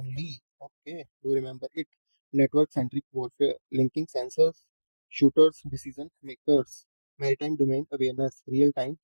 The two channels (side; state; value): both; inverted; correlation -1.00